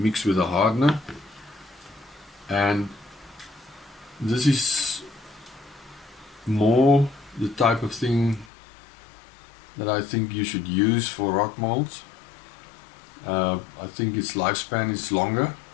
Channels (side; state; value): right; drops out; at 8.5 s